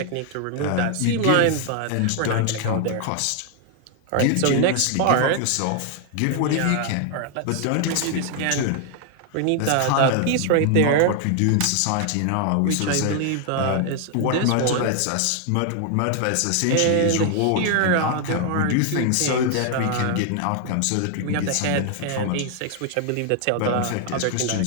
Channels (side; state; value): both; different; correlation 0.00